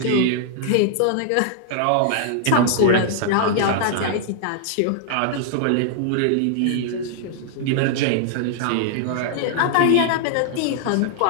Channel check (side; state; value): both; different; correlation -0.01